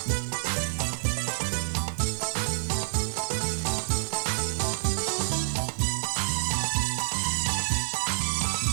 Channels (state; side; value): silent; left; digital silence